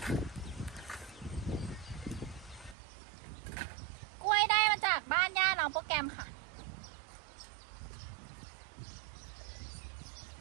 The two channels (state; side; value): drops out; left; at 2.8 s